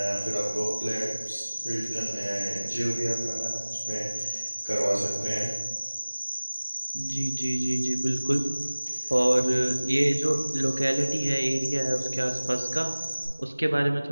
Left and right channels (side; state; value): both; inverted; correlation -1.00